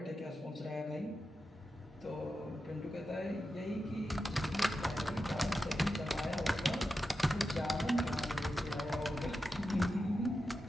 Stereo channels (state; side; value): normal; both; correlation 0.90